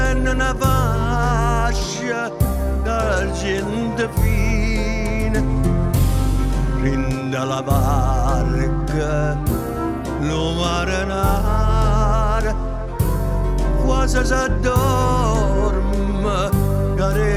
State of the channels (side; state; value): both; identical; correlation 1.00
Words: una fascia d'argento fine rinda la barca lo marinare quasi s'addorme